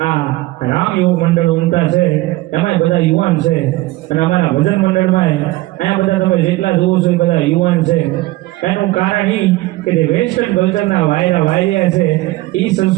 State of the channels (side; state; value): left; quieter; 19.1 dB